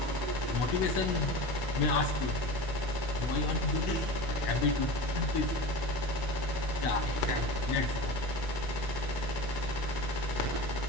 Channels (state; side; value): late; right; 16 ms